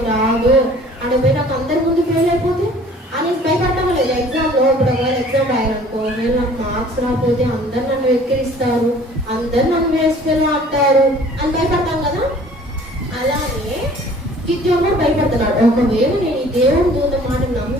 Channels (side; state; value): both; normal; correlation 0.51